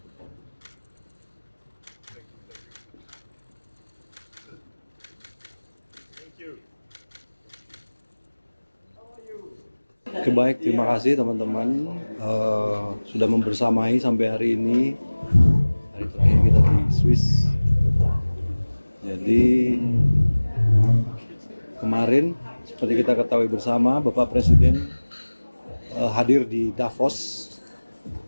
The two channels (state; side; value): inverted; both; correlation -1.00